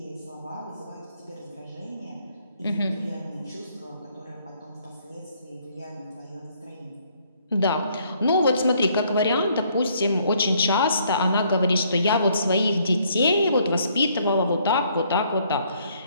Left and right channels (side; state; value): both; inverted; correlation -0.66